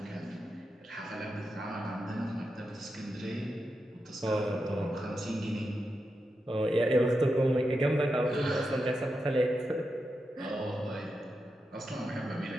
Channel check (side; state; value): both; normal; correlation 0.87